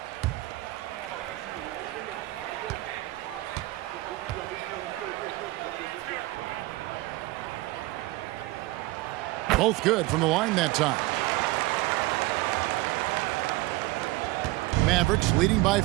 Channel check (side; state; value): left; quieter; 19.7 dB